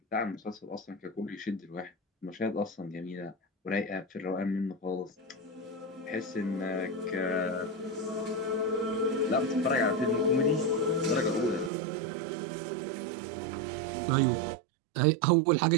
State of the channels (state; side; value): drops out; left; at 11.7 s